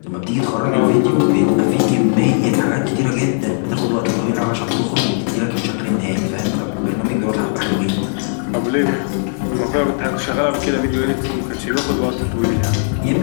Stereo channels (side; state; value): right; silent; 67 dB below the other